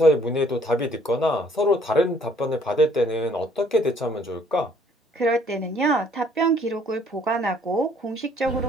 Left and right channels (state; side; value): normal; both; correlation 0.61